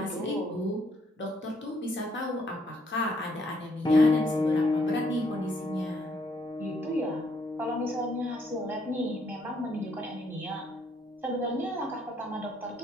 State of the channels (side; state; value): both; normal; correlation 0.70